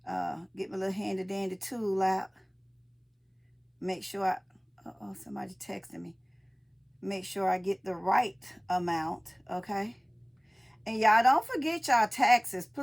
Get my little handy dandy tool out. Make sure I... Uh-oh, somebody texting me. Make sure I get the right amount. Okay? And y'all don't forget y'all taxes.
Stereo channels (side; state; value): both; identical; correlation 1.00